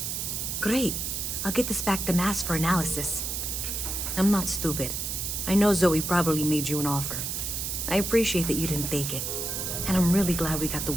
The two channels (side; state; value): right; noise; hiss, 3 dB below the sound